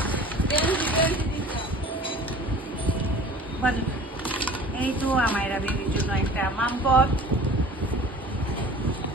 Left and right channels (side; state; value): both; normal; correlation 0.43